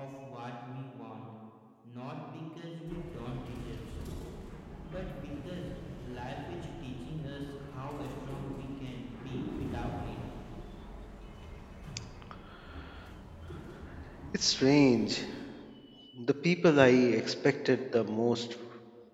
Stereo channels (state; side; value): identical; both; correlation 1.00